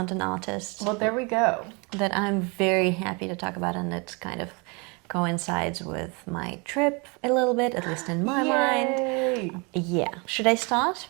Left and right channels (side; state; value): left; quieter; 30.1 dB